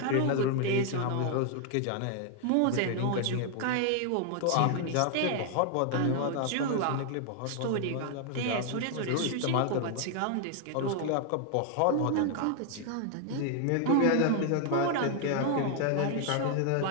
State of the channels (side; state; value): both; different; correlation 0.00